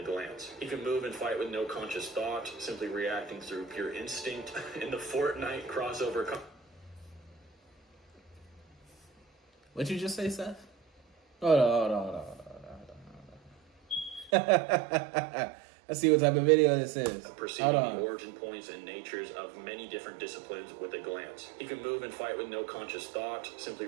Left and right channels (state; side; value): drops out; left; at 14.3 s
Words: glance. He can move and fight with no conscious thought, simply reacting through pure instinct. In the Fortnite crossover... What'd you just say, Seth? Hold on. Let's see what type of video this is. Perceiving the origin points and natures of many different disciplines with a glance. He can move and fight with no conscious thought, simply